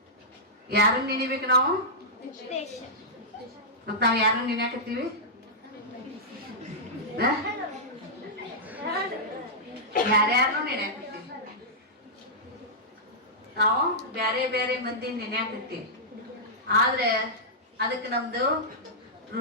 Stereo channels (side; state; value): both; normal; correlation -0.11